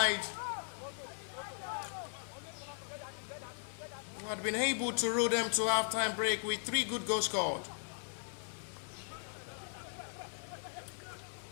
who had been able to roll them to halftime break with 3 good goals scored.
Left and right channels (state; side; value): silent; right; digital silence